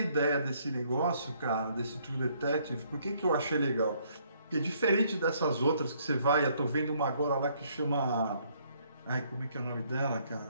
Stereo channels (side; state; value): both; inverted; correlation -0.67